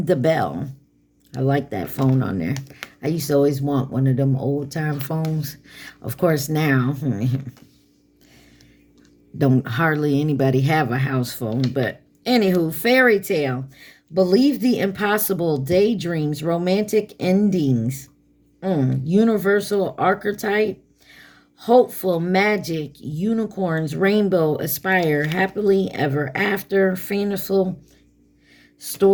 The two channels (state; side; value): identical; both; correlation 1.00